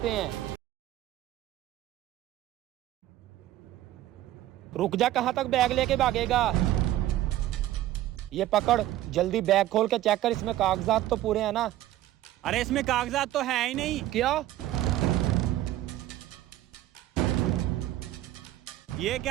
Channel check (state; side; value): quieter; left; 14.3 dB